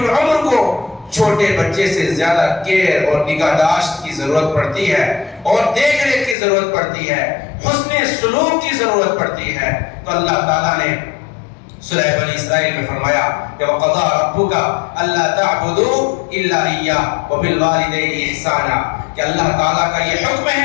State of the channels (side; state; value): right; drops out; at 6.4 s